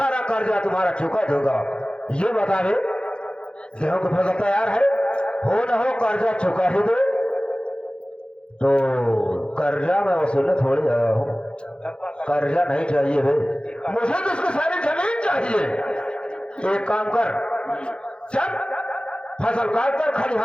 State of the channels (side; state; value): right; late; 0.055 ms